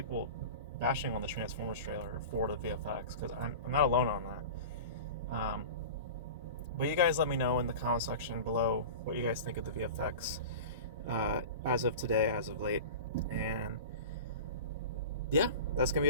bashing on the Transformers trailer for the VFX, because I'm not alone on that. But you guys let me know in the comment section below what you guys think of the VFX as of today, as of late. And yeah, that's gonna be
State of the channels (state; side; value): inverted; both; correlation -0.33